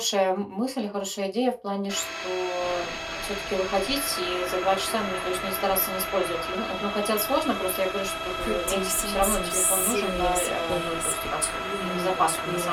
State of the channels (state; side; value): identical; both; correlation 1.00